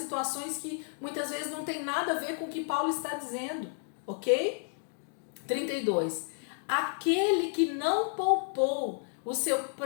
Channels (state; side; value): silent; right; 57 dB below the other